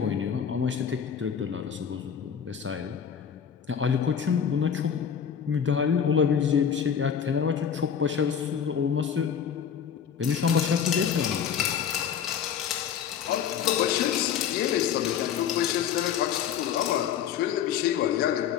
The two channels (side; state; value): right; quieter; 8.1 dB